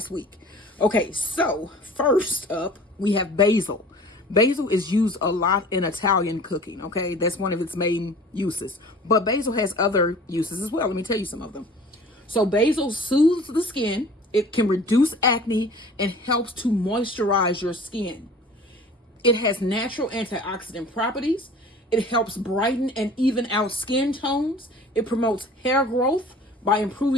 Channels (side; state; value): both; normal; correlation 0.45